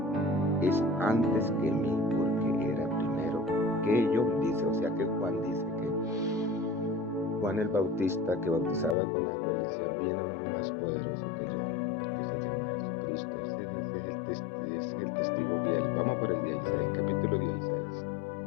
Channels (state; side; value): drops out; right; at 9.0 s